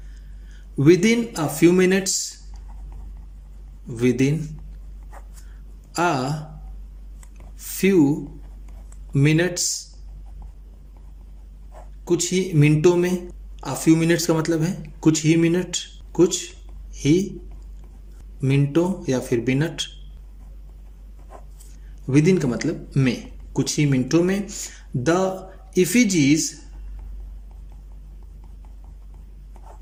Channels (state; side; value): identical; both; correlation 1.00